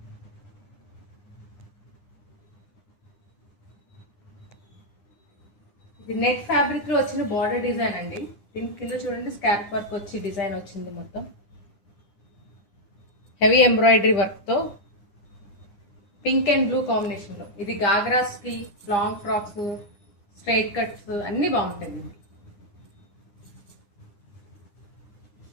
ఇది నెట్ ఫ్యాబ్రిక్ లో వచ్చిన బార్డర్ డిజైన్ అండి. దీని కింద చూడండి, స్కాల్ప్ వర్క్ వచ్చి డిజైన్ వచ్చింది. మొత్తం హెవీ ఎంబ్రాయిడరీ వర్క్ తో పింక్ అండ్ బ్లూ కాంబినేషన్ లో. ఇది గాగ్రాస్ కి, లాంగ్ ఫ్రాక్స్, స్ట్రైట్ కట్స్ అన్ని బాగుంటాయి.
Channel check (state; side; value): late; right; 9.8 ms